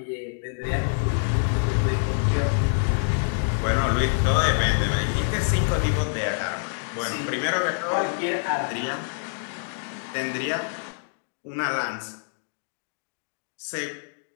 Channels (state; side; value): silent; right; digital silence